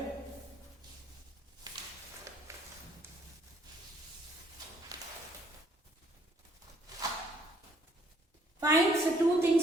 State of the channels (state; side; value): normal; both; correlation 0.64